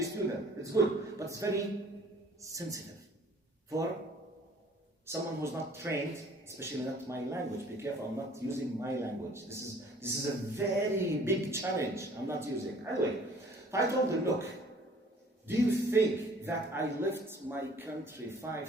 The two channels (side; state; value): both; normal; correlation 0.54